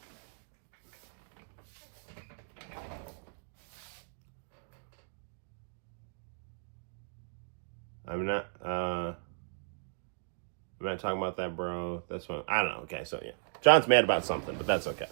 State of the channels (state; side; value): silent; left; digital silence